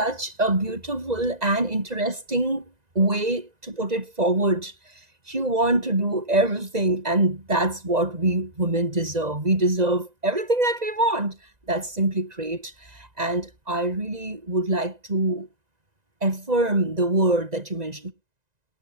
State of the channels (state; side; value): late; left; 1.9 ms